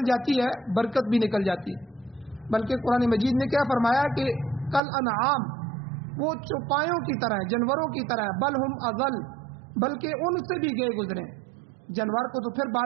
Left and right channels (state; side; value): drops out; left; at 4.8 s